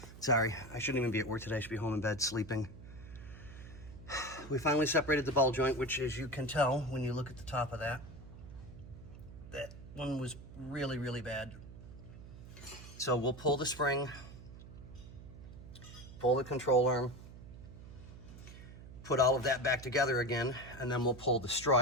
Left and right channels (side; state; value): right; noise; hum, 15 dB below the sound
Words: sorry, I shouldn't even be at work today. I should be home in bed sleeping. We finally separated the ball joint, which, as you can tell when you look at the top of that one was really, really bad. So we'll pull the spring, pull the control arm, put all of that back together again, and then we'll pull the